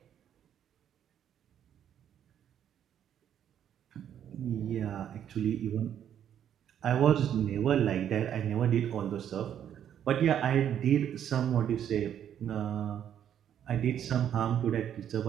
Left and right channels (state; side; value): quieter; left; 9.7 dB